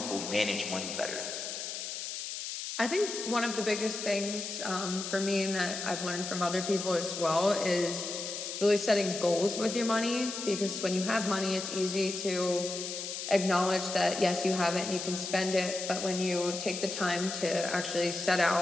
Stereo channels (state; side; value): noise; left; hiss, 6 dB below the sound